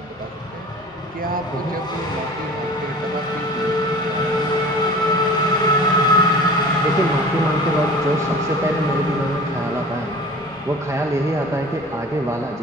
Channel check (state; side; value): normal; both; correlation 0.41